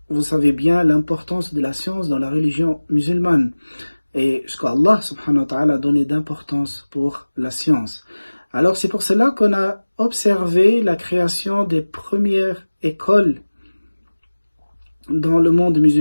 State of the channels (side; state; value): both; inverted; correlation -1.00